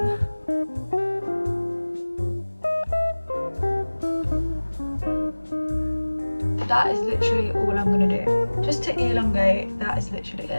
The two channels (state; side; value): inverted; both; correlation -1.00